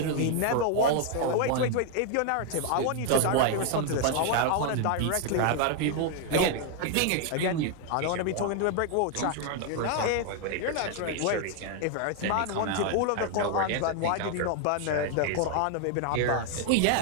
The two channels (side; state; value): both; different; correlation 0.00